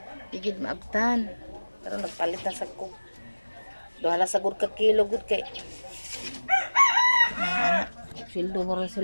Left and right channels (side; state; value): both; inverted; correlation -1.00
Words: digid maabtan. Pero nagpalit na sa kog. Duhala sa gud ka kilo gud kay. Sildo mo rin